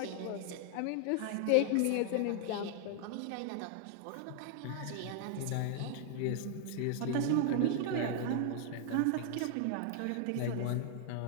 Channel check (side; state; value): both; different; correlation 0.00